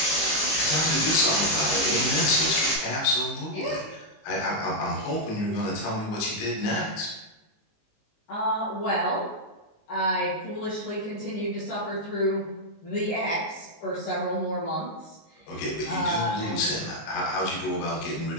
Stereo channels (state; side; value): late; right; 19 ms